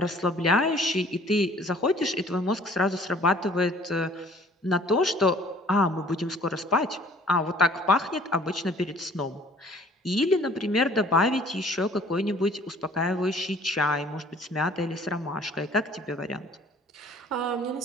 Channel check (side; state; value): both; normal; correlation 0.54